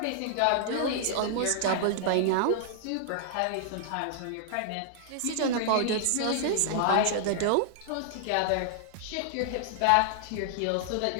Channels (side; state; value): both; different; correlation -0.01